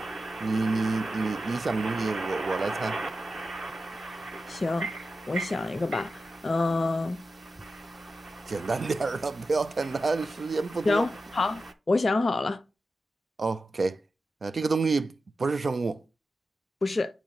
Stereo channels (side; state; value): both; normal; correlation 0.91